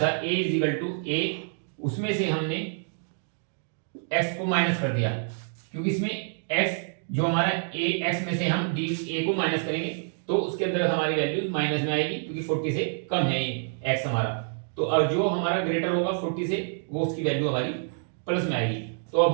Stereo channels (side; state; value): left; silent; digital silence